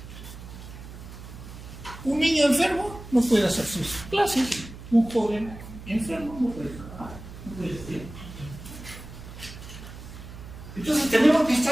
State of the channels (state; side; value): noise; right; hum, 14 dB below the sound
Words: Un niño enfermo no puede hacer sus clases, un joven enfermo no puede trabajar, no puede estudiar. Entonces tenemos que